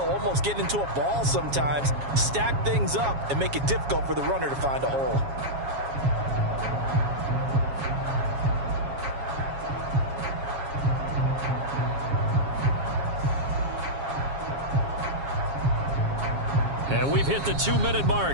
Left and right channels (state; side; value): late; left; 7.3 ms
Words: almost get into a ball sometimes, stack things up, and make it difficult for the runner to find a hole. And we've hit the 2-minute